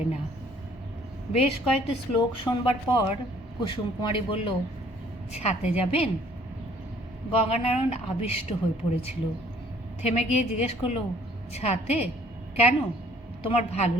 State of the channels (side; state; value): both; normal; correlation 0.59